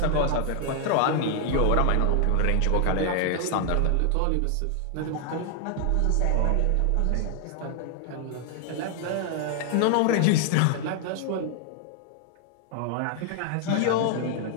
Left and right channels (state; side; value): different; both; correlation 0.00